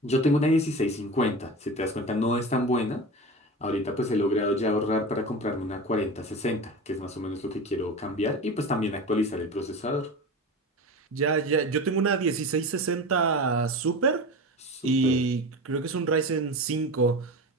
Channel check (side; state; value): both; normal; correlation 0.29